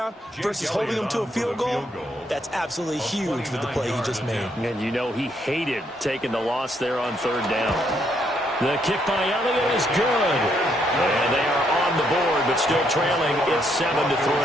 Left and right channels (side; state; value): both; normal; correlation 0.73